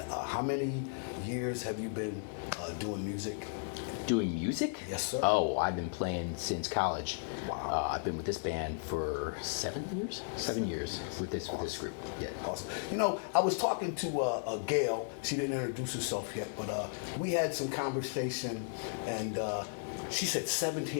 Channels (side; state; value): right; silent; digital silence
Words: how many years have you been doing music? Doing music? Yes, sir. Oh, I've been playing since college. Wow. I've been with this band for 7 years? 7 years with this group. Yeah. Awesome. You know, I was talking to Gail. She didn't introduce herself yet, but we had some conversation, and she said